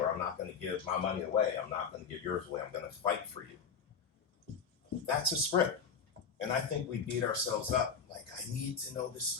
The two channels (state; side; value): quieter; right; 6.2 dB